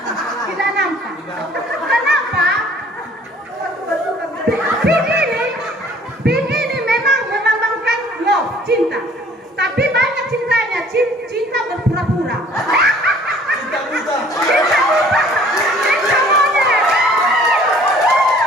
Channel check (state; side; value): normal; both; correlation 0.54